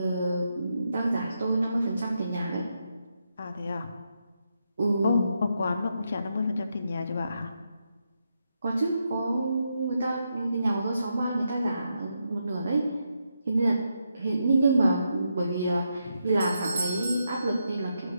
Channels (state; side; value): inverted; both; correlation -0.83